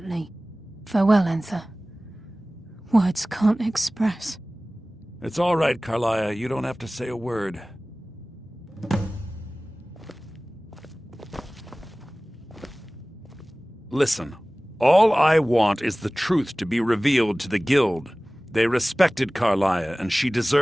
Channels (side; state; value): both; normal; correlation 0.98